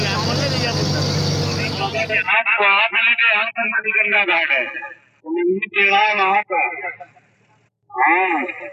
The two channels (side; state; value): both; identical; correlation 1.00